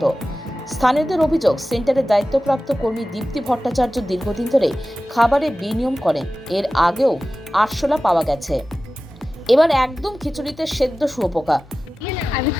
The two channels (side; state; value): both; normal; correlation 0.95